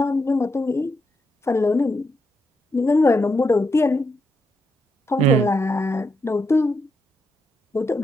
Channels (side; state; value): both; normal; correlation 0.81